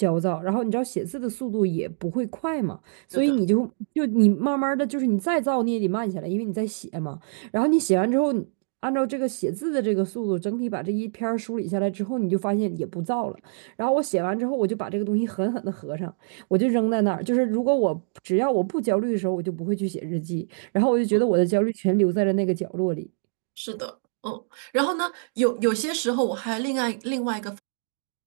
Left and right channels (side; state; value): left; silent; digital silence